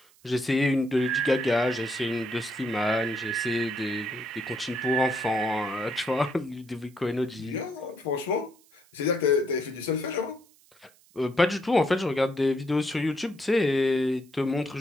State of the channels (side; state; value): right; noise; hiss, 29 dB below the sound